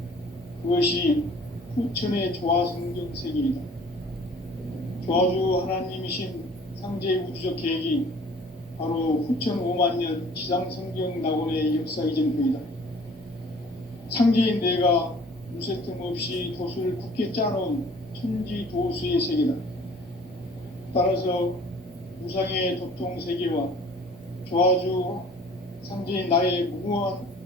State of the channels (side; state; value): both; normal; correlation 0.51